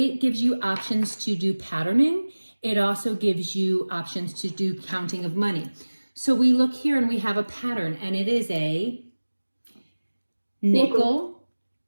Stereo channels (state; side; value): inverted; both; correlation -1.00